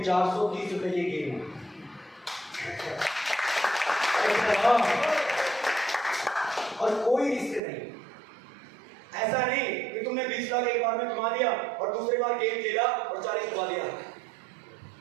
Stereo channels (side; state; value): left; drops out; at 7.6 s